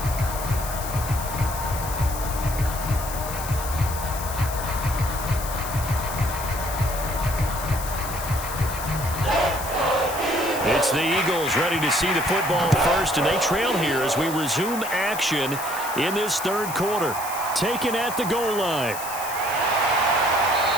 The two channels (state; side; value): noise; left; hiss, 9 dB below the sound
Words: It's the Eagles ready to see the football first, and they trail here as we resume action in this third quarter. Taken at the goal line.